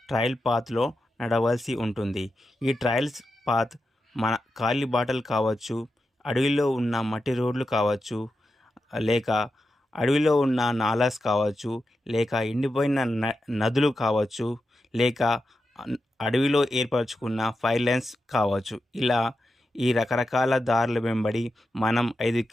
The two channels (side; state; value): both; normal; correlation 0.89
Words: ట్రయల్ పాత్లో నడవలసి ఉంటుంది. ఈ ట్రయల్స్ పాత్ మన ఖాళీ బాటలు కావచ్చు, అడవిలో ఉన్న మట్టి రోడ్లు కావచ్చు, లేక అడవిలో ఉన్న నాలాస్ కావచ్చు, లేక ఎండిపోయిన నదులు కావచ్చు, లేక అడవిలో ఏర్పరచుకున్న ఫైర్ లైన్స్ కావచ్చు. ఇలా ఈ రకరకాల దారుల వెంబడి మనం 5